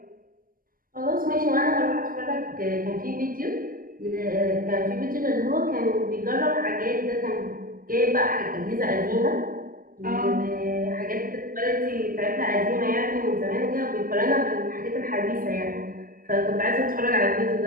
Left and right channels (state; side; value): late; left; 0.41 ms